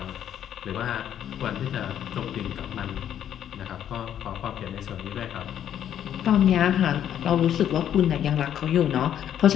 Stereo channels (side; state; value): right; quieter; 10.2 dB